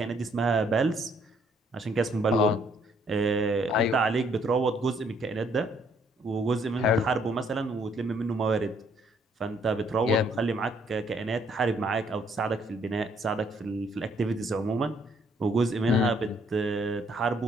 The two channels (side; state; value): both; normal; correlation 0.66